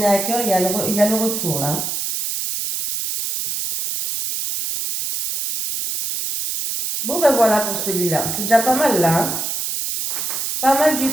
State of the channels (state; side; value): noise; right; hiss, 3 dB below the sound